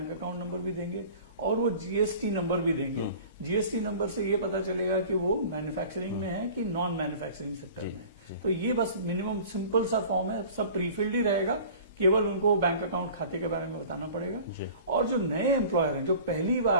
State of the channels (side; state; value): both; inverted; correlation -0.43